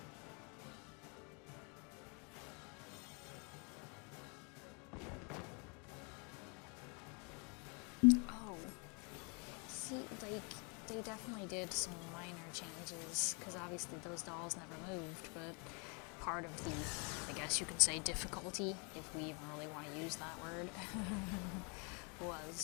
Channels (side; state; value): right; quieter; 34.5 dB